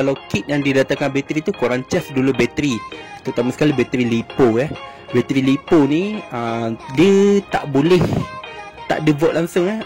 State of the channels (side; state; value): both; identical; correlation 1.00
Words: kit yang didatangkan bateri tu, korang charge dulu bateri, terutama sekali bateri LiPo. Bateri LiPo ni dia tak boleh tak ada volt langsung.